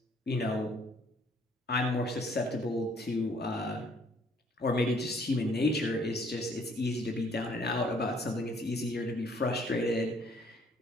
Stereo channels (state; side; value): normal; both; correlation 0.62